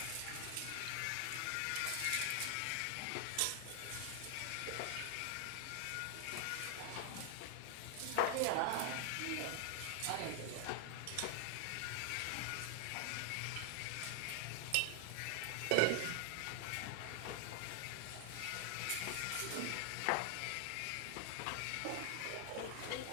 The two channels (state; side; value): different; both; correlation 0.00